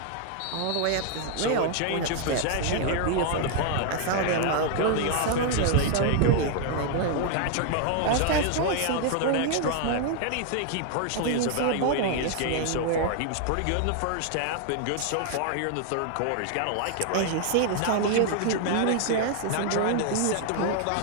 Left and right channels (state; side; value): different; both; correlation 0.00